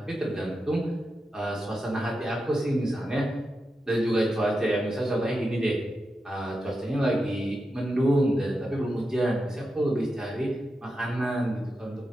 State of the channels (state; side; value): normal; both; correlation 0.89